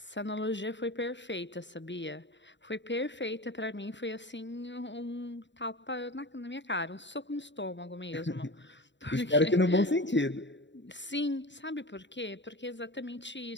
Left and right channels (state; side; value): late; right; 0.53 ms